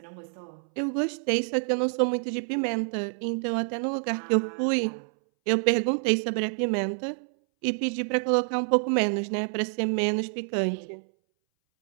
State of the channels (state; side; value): silent; left; 60 dB below the other